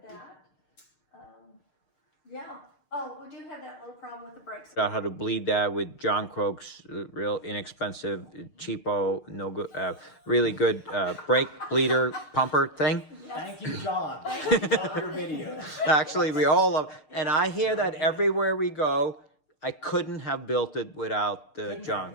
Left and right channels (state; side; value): late; right; 6.5 ms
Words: that. Yeah. Oh, we do have that little problem with the brakes. Out how to bleed that with John Croak's real inexpensive, cheapo, no good, really good brake bleeder pumper thing. Thank you, John. Love your videos. Actually, we all love, and I hear that everywhere we go. I couldn't have built it without Couldn't John.